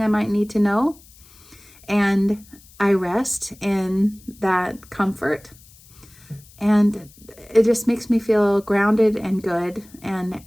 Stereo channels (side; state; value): left; noise; hiss, 25 dB below the sound